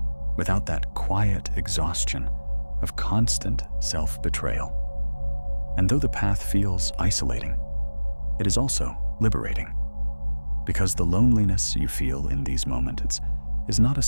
without that quiet exhaustion of constant self-betrayal. And though the path feels isolating, it is also liberating. Because the loneliness you feel in these moments is not a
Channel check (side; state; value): both; inverted; correlation -1.00